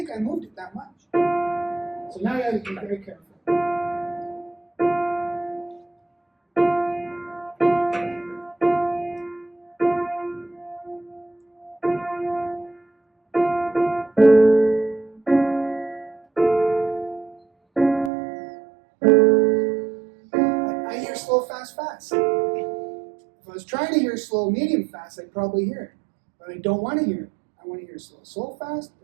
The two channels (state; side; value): drops out; left; at 18.1 s